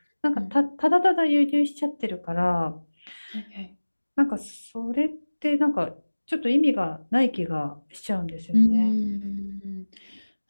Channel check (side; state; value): both; inverted; correlation -1.00